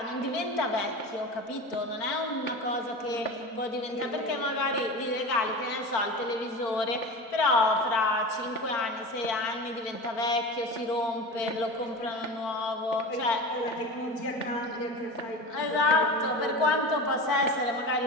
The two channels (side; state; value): right; late; 4.4 ms